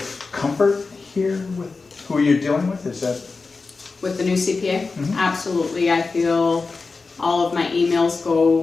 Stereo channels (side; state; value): right; quieter; 4.1 dB